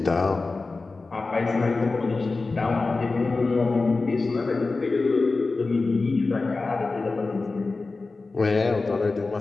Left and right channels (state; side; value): quieter; right; 3.7 dB